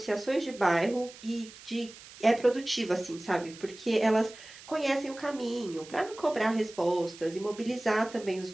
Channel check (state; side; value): noise; right; hiss, 18 dB below the sound